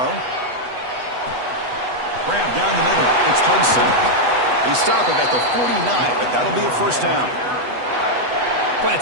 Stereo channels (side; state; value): left; late; 8.1 ms